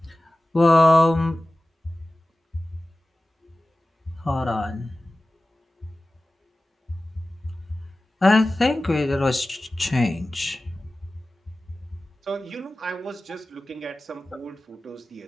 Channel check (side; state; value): both; normal; correlation 0.96